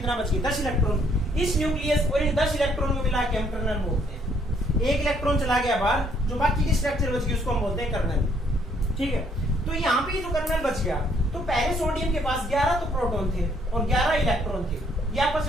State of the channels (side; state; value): both; normal; correlation 0.67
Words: बच गया 10 इलेक्ट्रॉन। इस न्यूक्लियस और इन 10 इलेक्ट्रॉन को मिला के हम कर्नल बोलते हैं। एक इलेक्ट्रॉन चला गया बाहर, जो बाकी की स्ट्रक्चर बच गई उसको हम बोलते हैं कर्नल। ठीक है, तो यहाँ पे जो कर्नल बच गया, तो पहले सोडियम के पास 11 तो प्रोटॉन थे और 11 इलेक्ट्रॉन थे, ये आपस